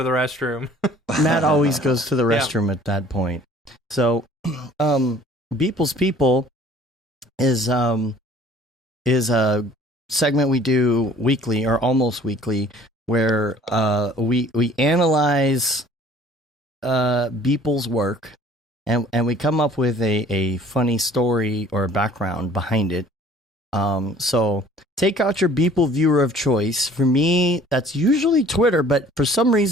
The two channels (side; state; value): both; normal; correlation 0.52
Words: the restroom. Matt always goes to the restroom at that point. So, Beeple's People is a segment we do weekly or almost weekly where we analyze Beeple's work and we come up with a funny story or a background behind it. So take out your Beeple viewer of choice. For me, that's usually Twitter, but for some